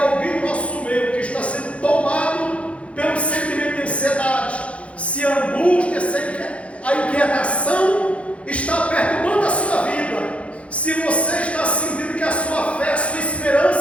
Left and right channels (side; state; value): right; late; 0.062 ms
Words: no nosso meio que está sendo tomado pelo sentimento de ansiedade, se a angústia, se a inquietação está perturbando a sua vida, se você está sentindo que a sua fé, a sua